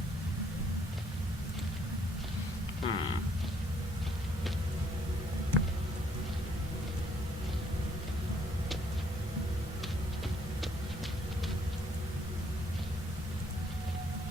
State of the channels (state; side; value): normal; both; correlation 0.67